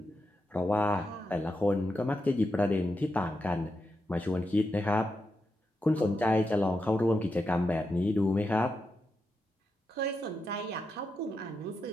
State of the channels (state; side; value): normal; both; correlation 0.86